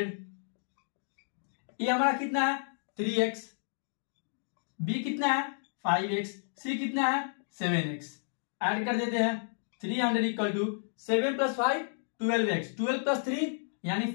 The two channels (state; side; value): silent; right; digital silence